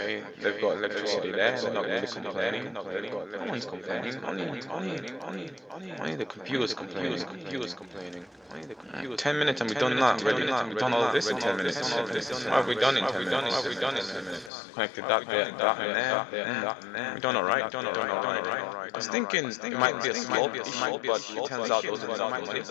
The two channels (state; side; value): drops out; right; at 14.5 s